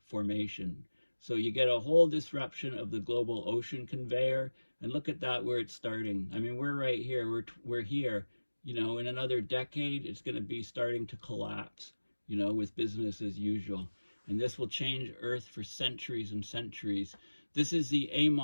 formation. So you get a whole disruption of the global ocean conveyor. And look at that, where it's starting. I mean, we're right here. We're here. You know, in another decade, it's going to be starting to collapse, you know, with business as usual. And this will change Earth for centuries and centuries. This is the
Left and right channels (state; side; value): inverted; both; correlation -1.00